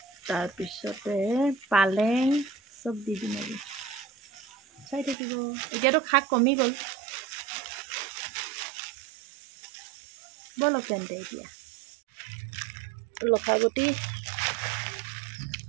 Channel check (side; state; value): left; drops out; at 5.2 s